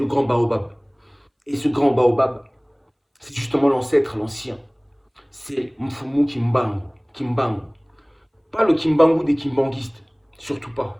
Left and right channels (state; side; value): identical; both; correlation 1.00